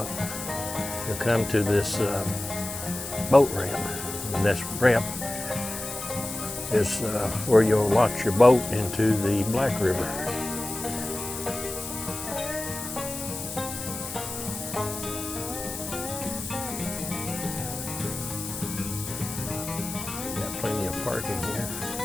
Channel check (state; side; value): noise; left; hiss, 8 dB below the sound